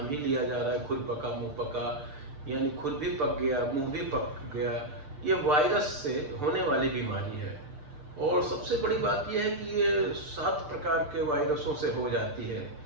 ही लिया जा रहा है, खुरपका मुंहपका, यानी खुर भी पक गया, मुंह भी पक गया, ये वायरस से होने वाली बीमारी है। और सबसे बड़ी बात यह है कि ये 7 प्रकार के वायरसों से हो जाती है,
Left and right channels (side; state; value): left; late; 6.8 ms